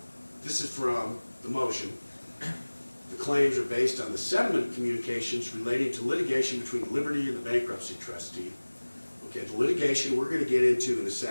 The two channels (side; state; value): both; inverted; correlation -1.00